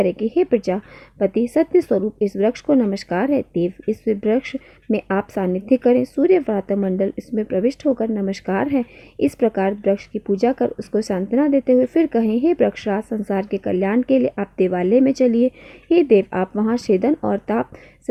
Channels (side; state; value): both; identical; correlation 1.00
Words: कि हे प्रजापति सत्य स्वरूप, इस वृक्ष को नमस्कार है। देव, इस वृक्ष में आप सानिध्य करें। सूर्य व्रात मंडल इसमें प्रविष्ट होकर नमस्कार है। इस प्रकार वृक्ष की पूजा कर उसको सांत्वना देते हुए फिर कहें, हे वृक्षराज, संसार के कल्याण के लिए आप देवालय में चलिए। हे देव, आप वहाँ छेदन और ताप